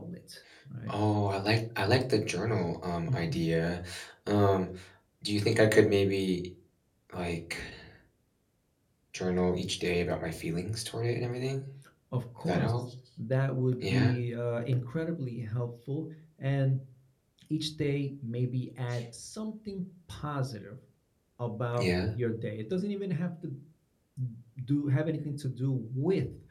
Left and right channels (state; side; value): identical; both; correlation 1.00